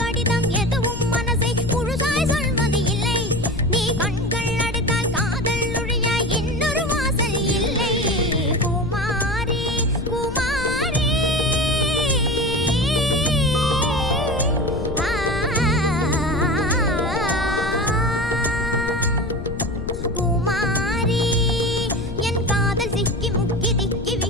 கடிதம் எதுவும் மனசை முழுசாய் சொல்வது இல்லை. நீ கண்கள் அடைத்தால் காதல் நுழைய இன்னொரு வாசல் இல்லை. குமாரி குமாரி குமாரி என் காதல் சிக்கி முக்கி திக்கி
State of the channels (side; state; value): left; noise; rumble, 7 dB below the sound